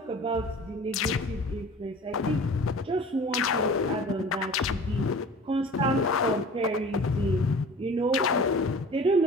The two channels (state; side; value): normal; both; correlation 0.42